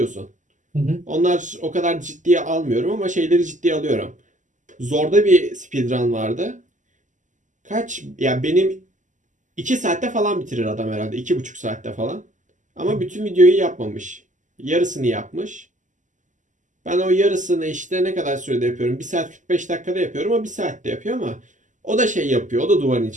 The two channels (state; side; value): late; left; 0.37 ms